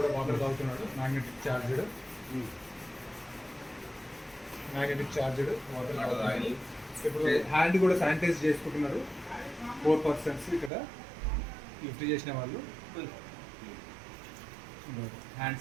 వాటర్ తాగుతున్నాడు. మ్యాగ్నెటిక్ చార్జెడ్ వాటర్ తాగుతున్నాడు. ఇప్పుడు హ్యాండ్ కూడా శానిటైజ్ చేసుకుంటున్నారు. 4 persons ఇక్కడ లిఫ్ట్ చేసిన వాళ్ళు హ్యాండ్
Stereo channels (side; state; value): left; drops out; at 10.7 s